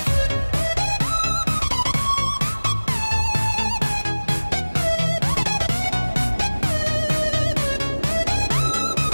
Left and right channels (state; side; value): inverted; both; correlation -1.00